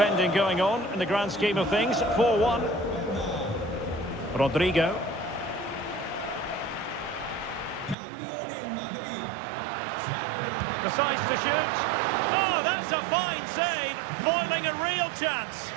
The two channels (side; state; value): left; drops out; at 8.0 s